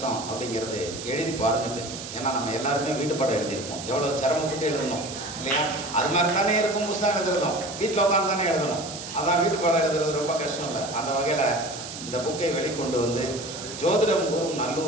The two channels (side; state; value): right; noise; hiss, 10 dB below the sound